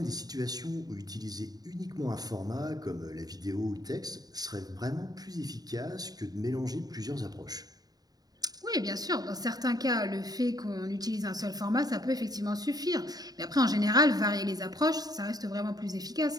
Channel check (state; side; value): late; left; 0.19 ms